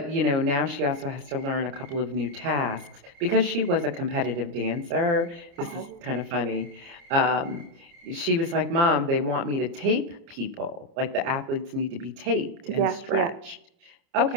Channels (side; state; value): left; late; 28 ms